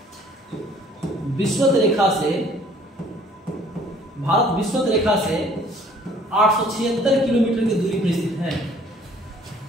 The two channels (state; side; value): normal; both; correlation 0.56